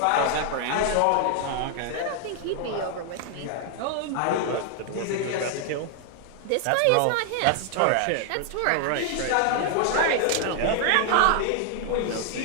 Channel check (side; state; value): both; different; correlation 0.00